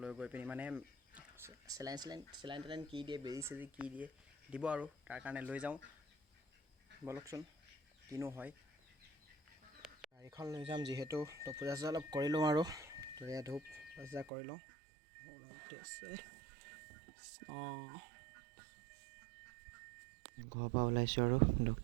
লৈ গৈ পিনি মানে চেলাইন কি দিয়ে, বেজি চেজি কি দিয়ে দিব আৰু তাৰ কাৰণে লৈ যাওঁ। বলকচোন কিনো হয়। গাড়ীখন লৈ যাম যিহেতু, তো পূজা চূজা অলপ কৰি লওঁ আৰু তো এয়া ধূপ পূজা কৰি লওঁ। ঘৰৰ পৰা ওলাইছোঁ আৰু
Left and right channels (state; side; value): drops out; left; at 14.3 s